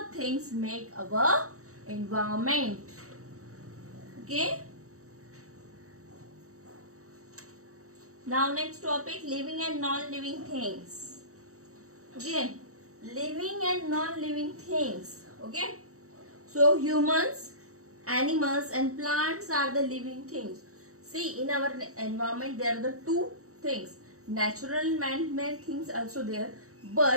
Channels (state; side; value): late; left; 0.65 ms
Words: things make our environment. Okay. Now next topic, living and non-living things. Okay, living and non-living things. Okay, so humans, animals and plants are the living things. See, in our environment there are the two things, natural man-made things also there,